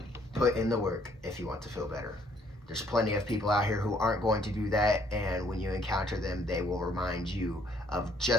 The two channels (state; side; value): normal; both; correlation 0.65